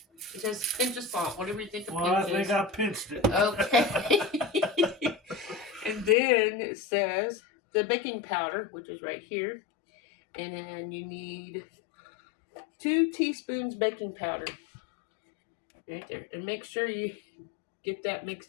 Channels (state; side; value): drops out; right; at 6.2 s